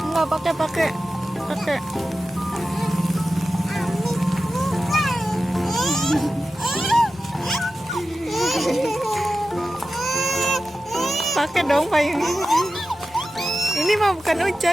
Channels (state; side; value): normal; both; correlation 0.93